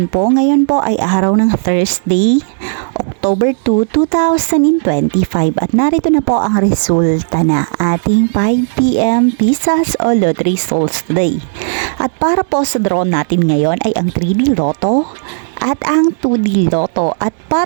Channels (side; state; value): left; silent; digital silence